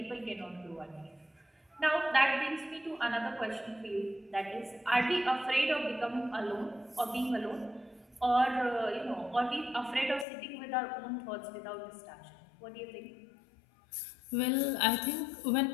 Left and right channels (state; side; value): drops out; right; at 10.2 s